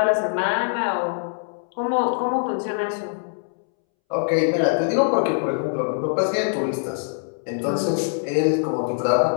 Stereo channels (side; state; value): right; silent; 63 dB below the other